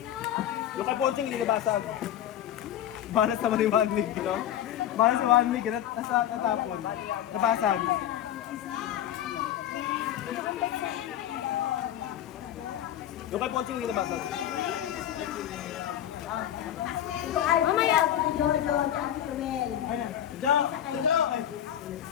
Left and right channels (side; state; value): right; quieter; 11.1 dB